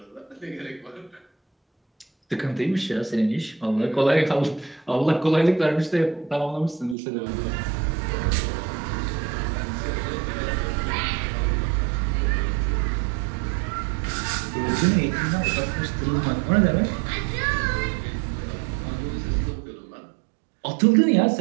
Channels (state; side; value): drops out; left; at 7.0 s